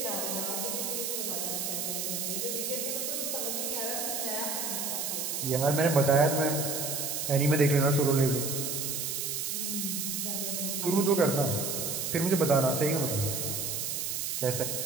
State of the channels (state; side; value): noise; right; hiss, 2 dB below the sound